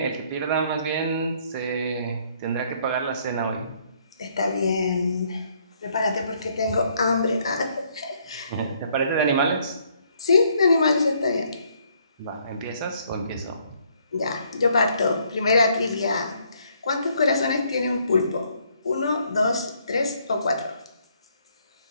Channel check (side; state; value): both; inverted; correlation -0.68